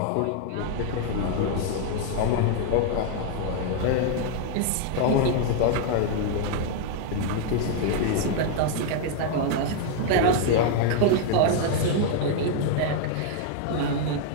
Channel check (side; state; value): both; different; correlation 0.00